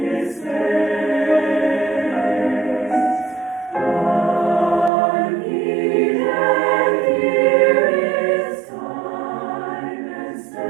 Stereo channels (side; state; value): left; drops out; at 4.9 s